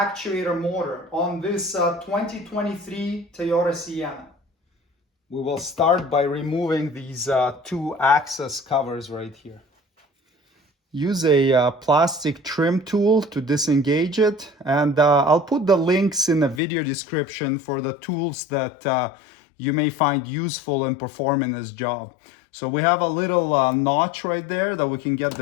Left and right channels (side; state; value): right; drops out; at 16.6 s